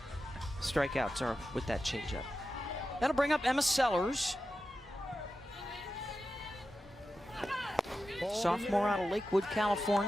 strikeouts are with that changeup. That'll bring up Emma Sellers. Sophomore out of Lakewood,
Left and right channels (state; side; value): normal; both; correlation 0.92